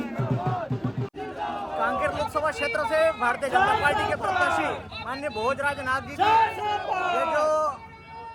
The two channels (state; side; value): identical; both; correlation 1.00